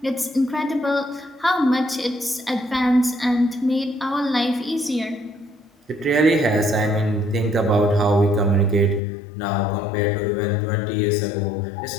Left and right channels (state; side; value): drops out; right; at 9.0 s